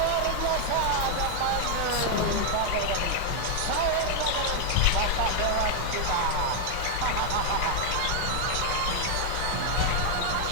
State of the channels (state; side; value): different; both; correlation 0.00